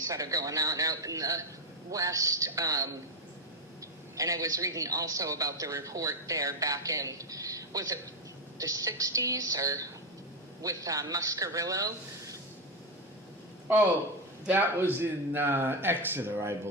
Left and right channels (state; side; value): normal; both; correlation 0.09